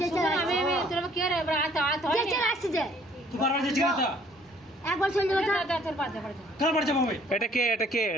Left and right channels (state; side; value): normal; both; correlation 0.60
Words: যেতে আসছে যে একবার চলে যাবো। এটা কে? এটা কে?